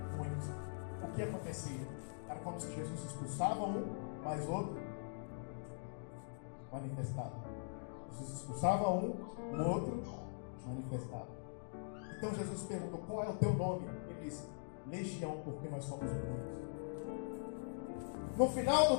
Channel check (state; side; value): silent; right; digital silence